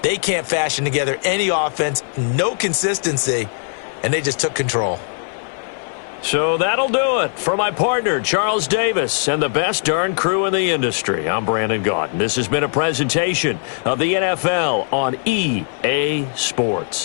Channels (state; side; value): silent; right; 57 dB below the other